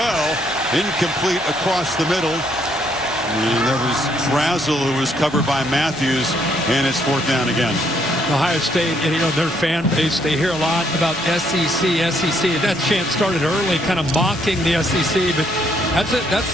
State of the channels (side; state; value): left; noise; rumble, 23 dB below the sound